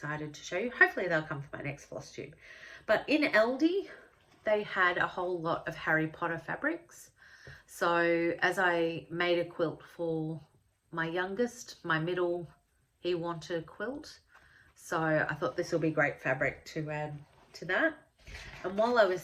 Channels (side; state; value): both; identical; correlation 1.00